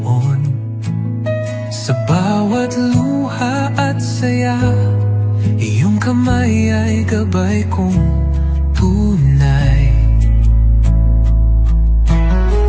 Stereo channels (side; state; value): both; identical; correlation 1.00